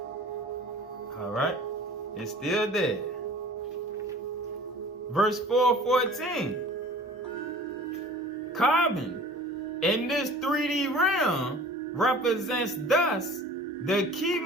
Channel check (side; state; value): both; normal; correlation 0.45